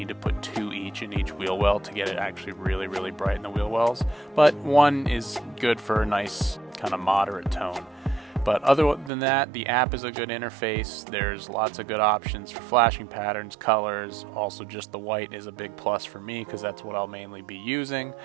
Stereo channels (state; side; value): drops out; left; at 9.1 s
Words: to put 2 each in each wheel well to get it actually really, really bright in the wheel wells. But one is good for a nice kind of moderate tone. But other than that, the app is a good interface. There's lots of good options for flashing patterns, colors. Also, just the white is a big plus for me because that's what I'll mainly be using.